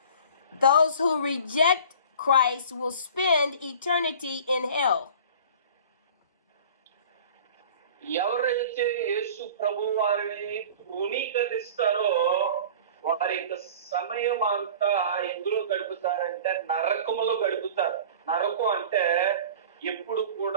Those who reject Christ will spend eternity in hell. ఎవరైతే యేసు ప్రభు వారిని తృణీకరిస్తారో వారి యొక్క సమయం అంతా ఎందులో గడుపుతారంటే నరకములో గడుపుతారు. నరకం అంటే ఎప్పుడు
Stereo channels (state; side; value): inverted; both; correlation -0.41